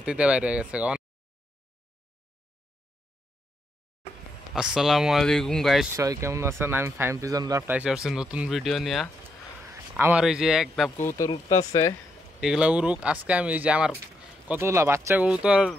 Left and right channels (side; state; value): both; normal; correlation 0.79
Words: বাইরে গেছে। আসসালামু আলাইকুম গাইস, সবাই কেমন আছেন? আমি ফাইম পিজন লাভ টাইসে আসছি নতুন ভিডিও নিয়ে। আমার এই যে এক ধাপ কবুতর উঠতেছে, এগুলা উড়ুক। আজকে আমি এই যে আমার কতগুলা বাচ্চা কবুতর